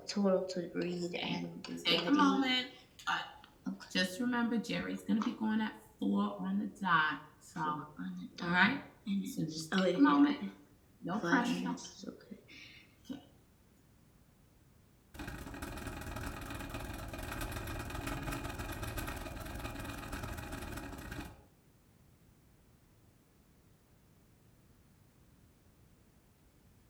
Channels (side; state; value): both; identical; correlation 1.00